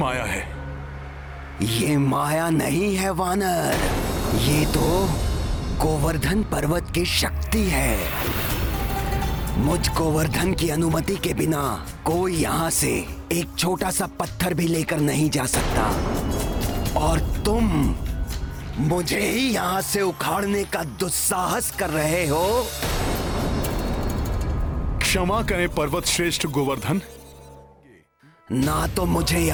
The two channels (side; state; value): both; identical; correlation 1.00